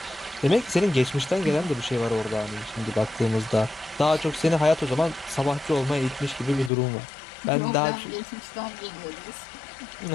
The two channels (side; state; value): right; drops out; at 6.7 s